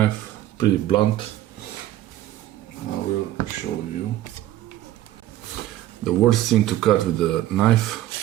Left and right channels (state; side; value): quieter; left; 13.9 dB